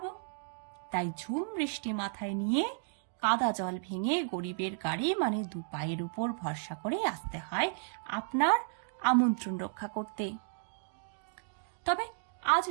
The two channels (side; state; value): left; silent; digital silence